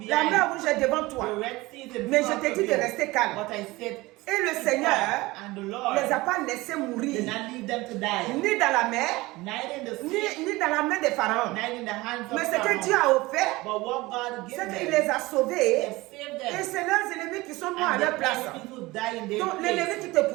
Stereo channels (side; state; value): left; quieter; 20.8 dB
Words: La behind. mer rouge est devant toi. The Red Sea is in Mais front je t'ai of dit de you. rester calme. But I said, Et le keep Seigneur calm. And the Lord ne les a pas laissés did mourir, not leave them to die. ni dans la mer, Neither in the sea, ni dans la main des pharaons. neither in the hands of Mais ce que Pharaoh. Dieu a offert, But what God c'est gives qu'il them, les a He sauvés. has saved Et them. c'est leurs ennemis qui sont morts à And leur the place. enemies who die in their Donc l'ennemi place. qui te